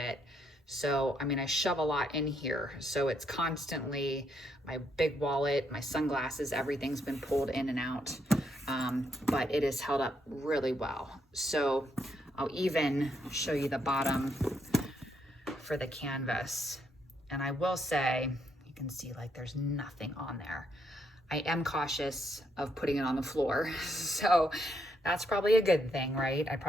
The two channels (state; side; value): normal; both; correlation 0.75